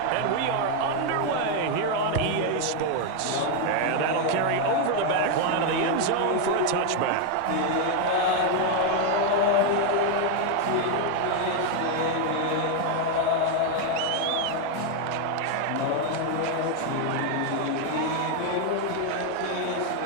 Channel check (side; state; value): both; different; correlation 0.01